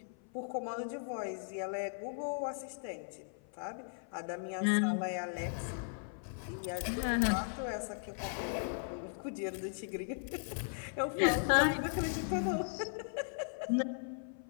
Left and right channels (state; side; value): silent; right; 53 dB below the other